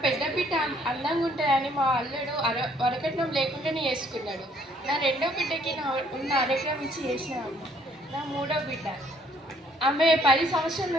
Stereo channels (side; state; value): both; normal; correlation 0.64